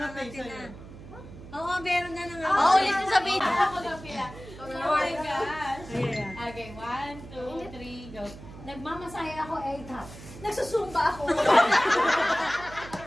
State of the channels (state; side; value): noise; right; hum, 16 dB below the sound